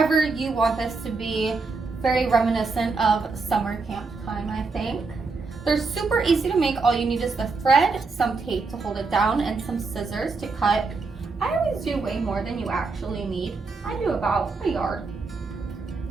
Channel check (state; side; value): quieter; left; 4.2 dB